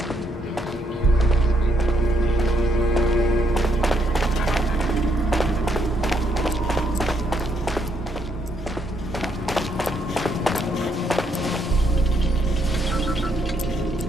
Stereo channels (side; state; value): both; normal; correlation 0.73